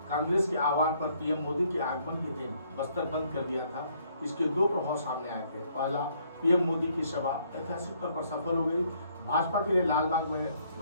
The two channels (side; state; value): both; inverted; correlation -0.67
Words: कांग्रेस के आह्वान पर पीएम मोदी के आगमन के दिन बस्तर बंद कर दिया था। इसके दो प्रभाव सामने आए थे। पहला, पीएम मोदी की सभा ऐतिहासिक तौर पर सफल हो गई। भाजपा के लिए लालबाग